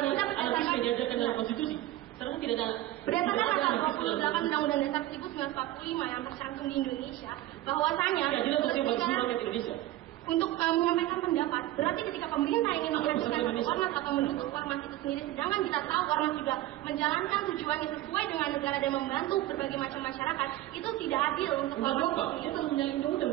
ada anarkisme diajarkan dalam konstitusi? Sekarang tidak ada. Berdasarkan pasal 28 Undang-Undang Dasar 1945 yang tercantum di Indonesia, bahwasanya Indonesia untuk menyampaikan pendapat, berarti ketika pemerintah ingin mengajukan satu ormas atau mendukung ormas itu sendiri, sedangkan kita tahu ormas juga menjalankan tujuannya sesuai dengan negara dan membantu berbagai macam masyarakat, itu tidak adil untuk ormas. Itu telah menyalahi undang-undang,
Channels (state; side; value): quieter; left; 15.4 dB